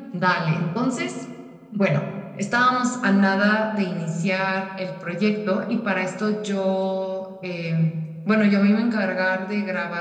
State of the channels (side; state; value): both; identical; correlation 1.00